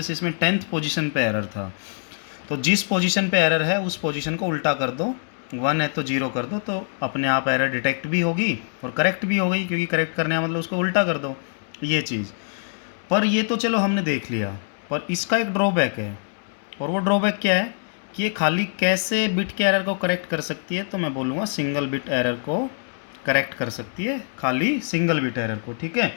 इसमें 10th पोजीशन पे एरर था, तो जिस पोजीशन पे एरर है उस पोजीशन को उल्टा कर दो, 1 है तो 0 कर दो, तो अपने आप एरर डिटेक्ट भी होगी और करेक्ट भी हो गई, क्योंकि करेक्ट करने का मतलब उसको उल्टा कर दो, ये चीज़। पर ये तो चलो हमने देख लिया, पर इसका एक ड्रॉबैक है, और वो ड्रॉबैक क्या है कि ये खाली कैसे बिट के एरर को करेक्ट कर सकती है, तो मैं बोलूँगा सिंगल बिट एरर को करेक्ट कर सकती है, खाली सिंगल बिट एरर को, ठीक है।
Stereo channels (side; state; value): right; silent; 63 dB below the other